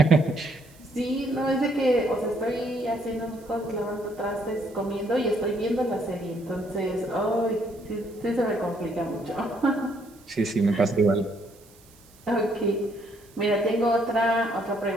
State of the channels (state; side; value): noise; right; hiss, 27 dB below the sound